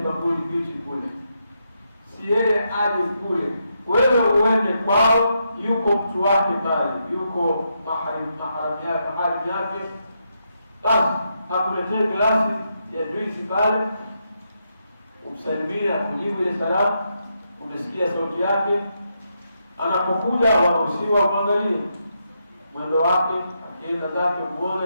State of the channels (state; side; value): inverted; both; correlation -0.81